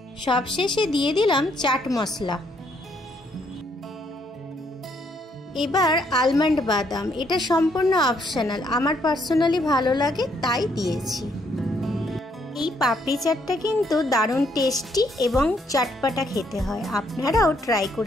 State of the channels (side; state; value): both; normal; correlation 0.71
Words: সবশেষে দিয়ে দিলাম চাট মশলা। এবার আলমন্ড বাদাম। এটা সম্পূর্ণ অপশনাল, আমার পার্সোনালি ভালো লাগে তাই দিয়েছি। এই পাপড়ি চাটটা কিন্তু দারুণ টেস্টি এবং চটপটা খেতে হয়। আপনারাও ট্রাই